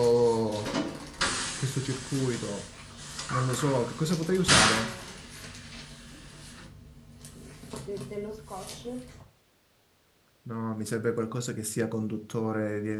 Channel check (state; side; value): identical; both; correlation 1.00